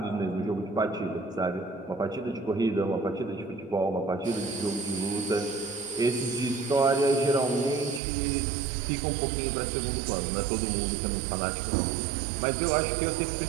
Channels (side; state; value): left; drops out; at 8.0 s